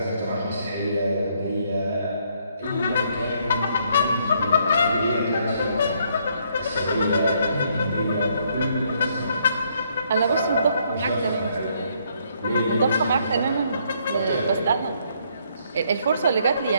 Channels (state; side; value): inverted; both; correlation -0.70